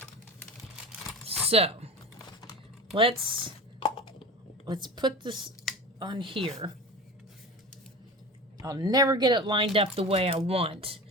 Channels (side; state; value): both; normal; correlation 0.31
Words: So let's put this on here. I'll never get it lined up the way I want